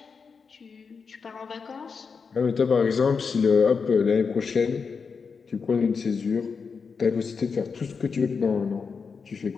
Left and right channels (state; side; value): quieter; right; 5.4 dB